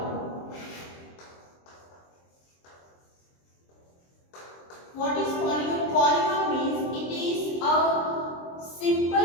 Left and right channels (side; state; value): right; late; 23 ms